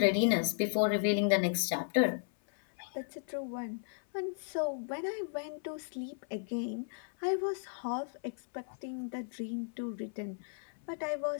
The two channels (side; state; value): right; silent; 54 dB below the other